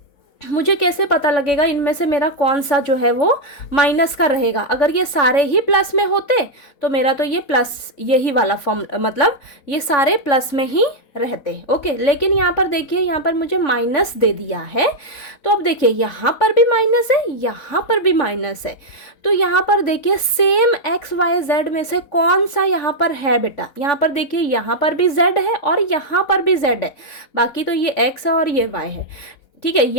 मुझे कैसे पता लगेगा इनमें से मेरा कौन सा जो है वो माइनस का रहेगा। अगर ये सारे ही प्लस में होते तो मेरा तो ये प्लस, यही वाला फॉर्म, मतलब ये सारे प्लस में ही रहते, ओके। लेकिन यहाँ पर देखिए, यहाँ पर मुझे माइनस दे दिया है, तो अब देखिए यहाँ पर भी माइनस है, यहाँ पर भी माइनस है, तो यहाँ पर देखिए सेम XYZ में से कौन सा यहाँ पर है बेटा। यहाँ पर देखिए, यहाँ पर भी Z है और यहाँ पर भी Z है, बाकी तो ये X है और ये Y है, ठीक है।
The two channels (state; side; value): late; right; 3.5 ms